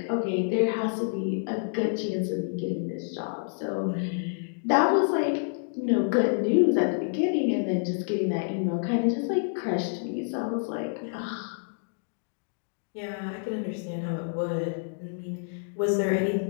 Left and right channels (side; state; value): right; silent; digital silence